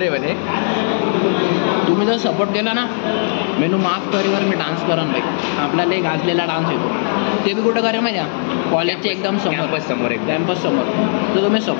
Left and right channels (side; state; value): right; silent; 58 dB below the other